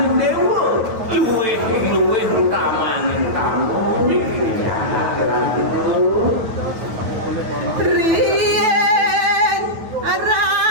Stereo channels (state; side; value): late; left; 9.1 ms